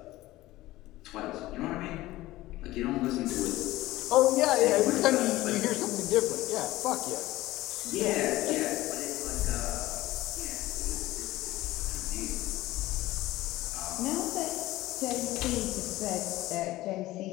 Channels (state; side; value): quieter; right; 17.3 dB